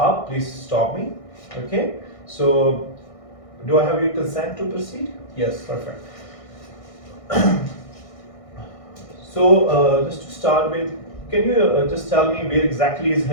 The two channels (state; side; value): late; right; 1.6 ms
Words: please stop me. Okay, so do I have your consent to proceed? Yes. Perfect. So just to start with, can you just tell me where exactly is